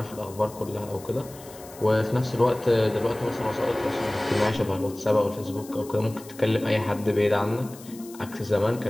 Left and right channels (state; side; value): noise; left; hiss, 19 dB below the sound